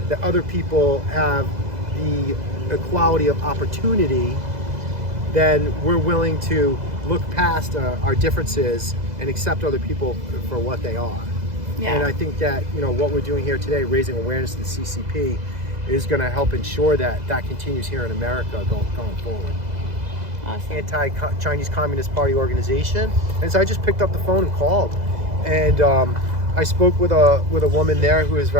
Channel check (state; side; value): late; left; 2.0 ms